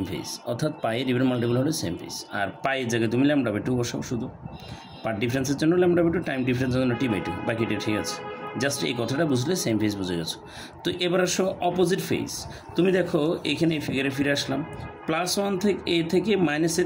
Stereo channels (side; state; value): both; identical; correlation 1.00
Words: ফেজ, অর্থাৎ পাইয়ের ইভেন মাল্টিপল হলে সেম ফেজ। আর পাইয়ের জায়গায় তুমি λ/2 বসাও, শুধু পার্ট ডিফারেন্সের জন্য λ/2, টাইম ডিফারেন্সের জন্য t/2, বাকিটা ঠিক আছে। জাস্ট এই কথাটা বুঝলে সেম ফেজ বুঝে গেছো। তো এবার আসো অপোজিট ফেজ। তুমি দেখো এখানে এই ফিগারে ফিরে আসলাম, +1 থেকে এ থেকে